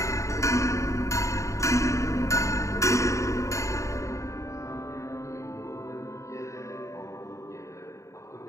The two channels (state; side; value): late; right; 0.15 ms